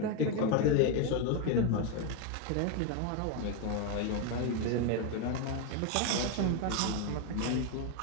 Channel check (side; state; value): both; different; correlation 0.02